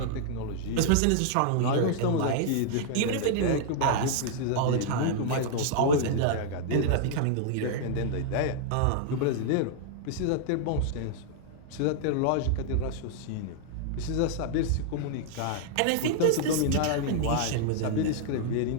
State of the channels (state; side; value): different; both; correlation -0.01